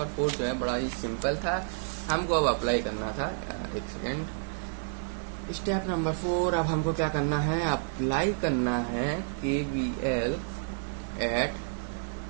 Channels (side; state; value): left; silent; digital silence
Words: 4 जो है बड़ा ही सिंपल था, हमको अब अप्लाई करना था। एक सेकेंड, स्टेप नंबर 4 अब हमको क्या करना है, अप्लाई करना है KVL at